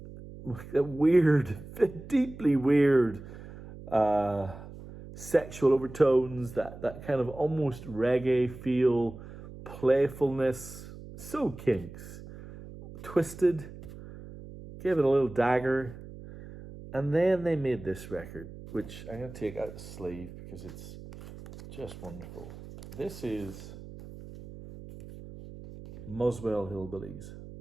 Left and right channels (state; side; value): noise; right; hum, 15 dB below the sound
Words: weird, deeply weird sexual overtones, that kind of almost reggae feel, playfulness, so Kinks. Twisted, gave it a little dagger, and then they made this record, which I'm going to take out the sleeve because it's just wonderful. This is Muswell Hillbillies